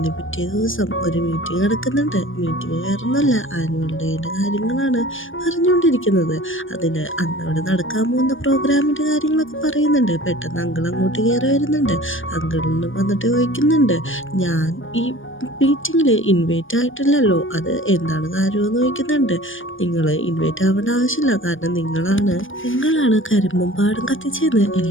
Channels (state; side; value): late; right; 0.57 ms